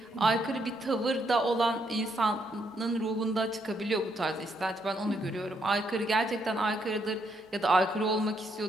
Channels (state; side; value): normal; both; correlation 0.75